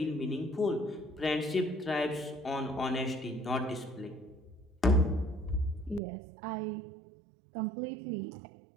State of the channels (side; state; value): left; drops out; at 6.0 s